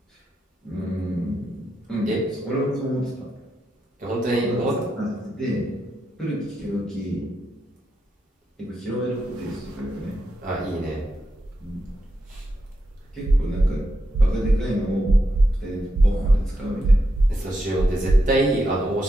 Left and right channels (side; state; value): both; normal; correlation 0.84